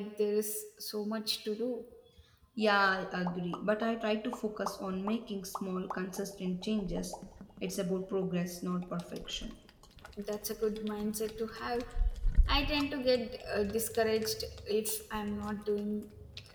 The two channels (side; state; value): both; identical; correlation 1.00